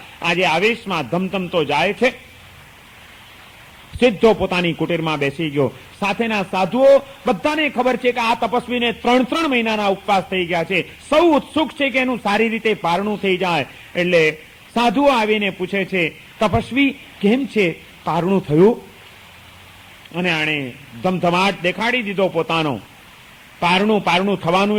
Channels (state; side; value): identical; both; correlation 1.00